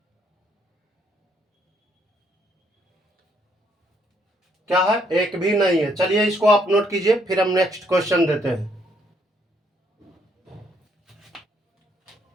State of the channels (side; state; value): both; normal; correlation 0.70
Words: क्या है, एक भी नहीं है। चलिए इसको आप नोट कीजिए, फिर हम नेक्स्ट क्वेश्चन देते हैं।